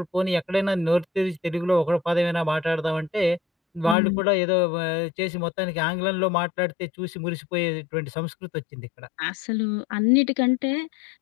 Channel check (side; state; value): right; drops out; at 4.0 s